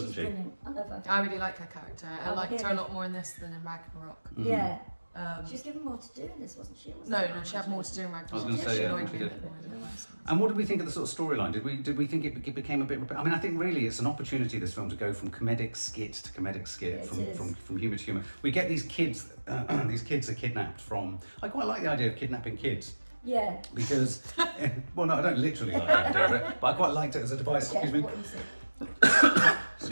She's she? brilliant, I love her. I really like her character. I Oh, liked her yeah. a lot more in this than in Ragnarok. Yeah, Um, she was given more to do in this, wasn't she? no, she had more to do in Ragnarok. I was gonna say, She yeah, annoyed she me a did. bit more than the rest. And what did we think of the sort of storyline? Did we think it became a bit? I mean, I think really it's an opportunity, this film, to go from comedic skit to comedic skit, Yeah, it from humour to humour. We get these kids. These kids are kidnapped from. I quite like the idea of kidnapping kids Yeah. because, well, no, I don't literally like the idea of it, but I quite liked it as a device. Yeah, Excuse me. what you say.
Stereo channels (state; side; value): inverted; both; correlation -1.00